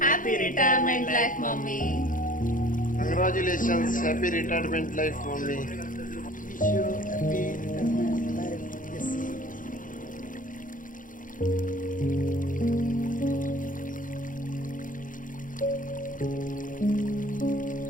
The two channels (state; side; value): late; right; 0.39 ms